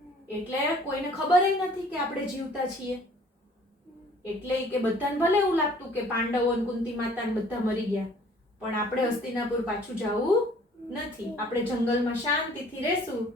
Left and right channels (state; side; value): normal; both; correlation 0.54